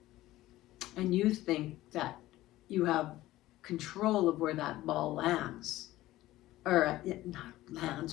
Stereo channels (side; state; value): right; quieter; 16.2 dB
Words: And you think that you have control of where that ball lands, or not